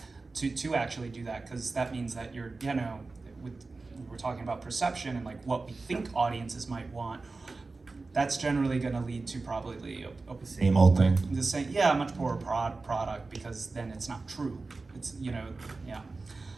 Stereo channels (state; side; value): quieter; left; 3.7 dB